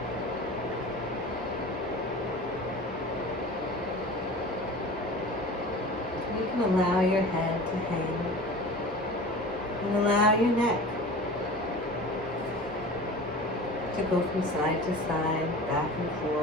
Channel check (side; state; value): both; normal; correlation 0.37